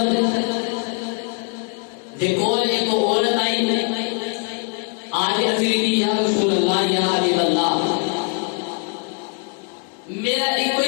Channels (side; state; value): right; quieter; 36.2 dB